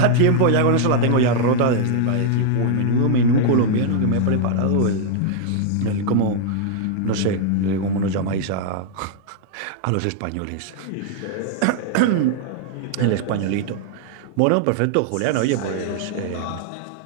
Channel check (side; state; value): both; different; correlation 0.00